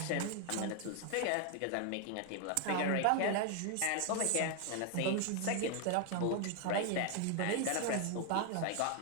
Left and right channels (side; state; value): both; different; correlation 0.00